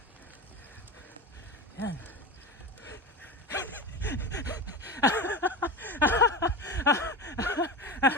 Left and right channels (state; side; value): normal; both; correlation 0.26